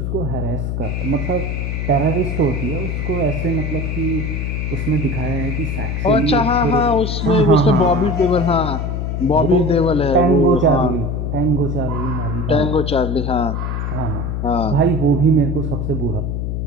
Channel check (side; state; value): left; noise; hum, 2 dB below the sound